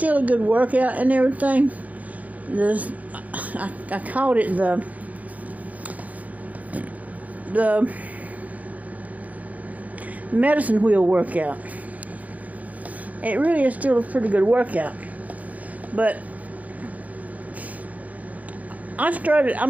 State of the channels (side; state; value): left; late; 0.074 ms